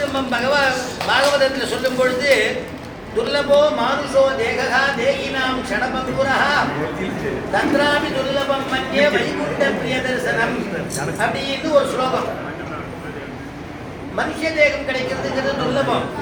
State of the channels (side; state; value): both; identical; correlation 1.00